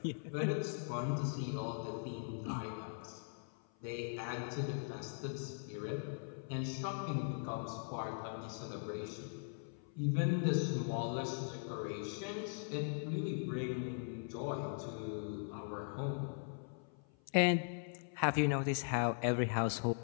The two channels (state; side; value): silent; right; 51 dB below the other